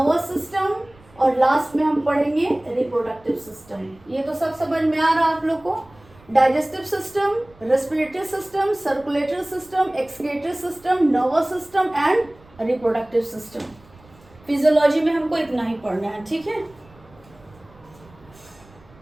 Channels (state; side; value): noise; right; rumble, 26 dB below the sound